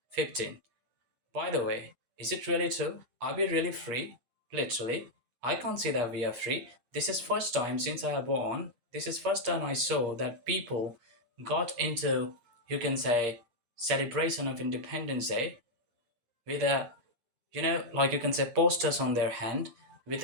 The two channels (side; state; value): left; late; 8.5 ms